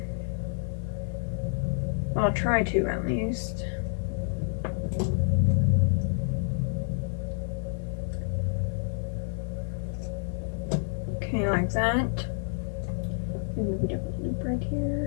I'll try to at least. Okay, like that. Maybe a loop right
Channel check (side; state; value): right; silent; 59 dB below the other